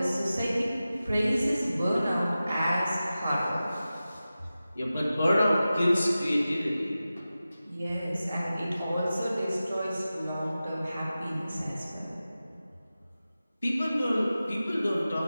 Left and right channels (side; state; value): both; inverted; correlation -0.95